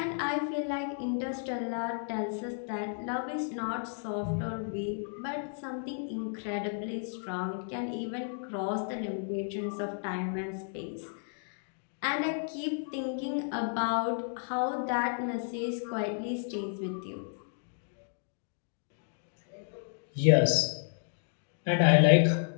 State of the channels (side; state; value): right; silent; digital silence